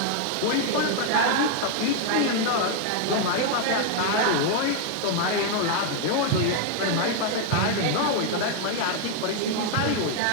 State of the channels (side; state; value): both; different; correlation 0.00